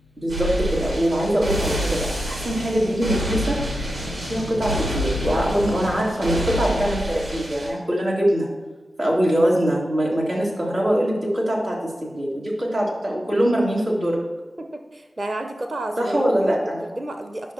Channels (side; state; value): both; normal; correlation 0.91